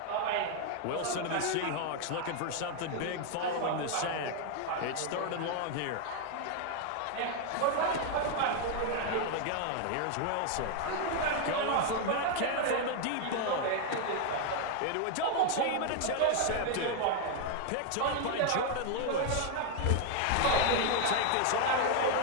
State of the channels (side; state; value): both; different; correlation 0.01